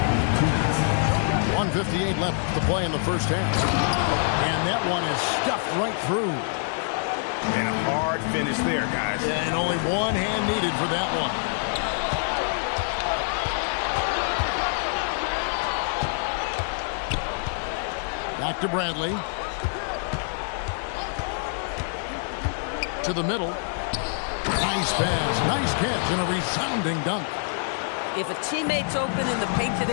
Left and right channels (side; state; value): right; silent; digital silence